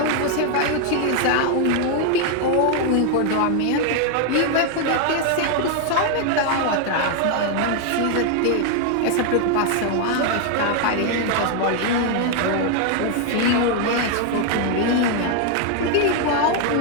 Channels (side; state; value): both; different; correlation 0.01